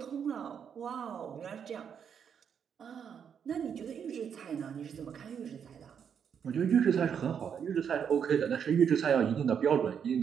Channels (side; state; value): left; quieter; 7.6 dB